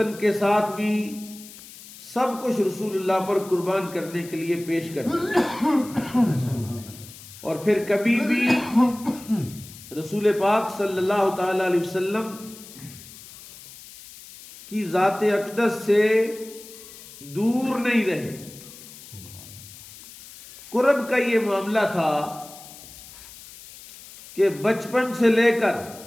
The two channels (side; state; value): left; noise; hiss, 18 dB below the sound